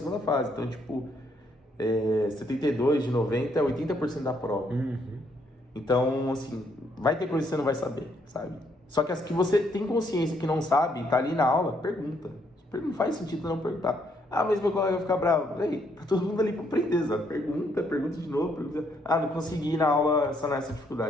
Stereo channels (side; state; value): both; normal; correlation 0.72